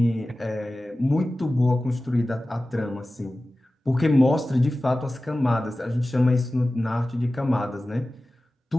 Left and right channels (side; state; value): both; normal; correlation 0.96